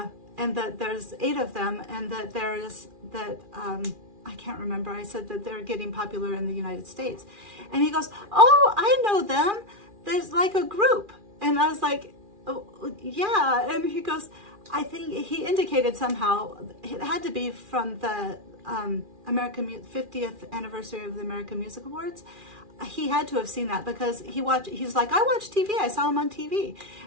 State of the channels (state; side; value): late; left; 2.4 ms